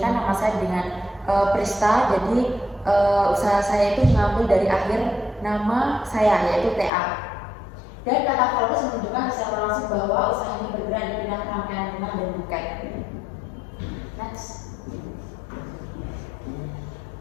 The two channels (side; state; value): right; drops out; at 6.9 s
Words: nama saya dengan Prista, jadi usaha saya itu mengambil dari akhir nama saya yaitu TA. Dan kata Floris menunjukkan secara langsung bahwa usaha ini bergerak di bidang rangkaian bunga dan buket. Next.